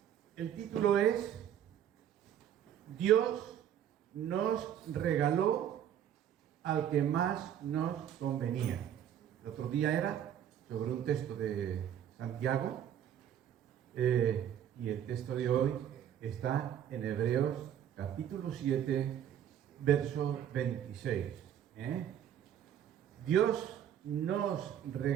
el título es Dios nos regaló al que más nos convenía. El otro día era sobre un texto de Santiago y el texto de hoy está en Hebreos capítulo 7, verso 26. Dios nos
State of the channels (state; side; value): quieter; left; 9.9 dB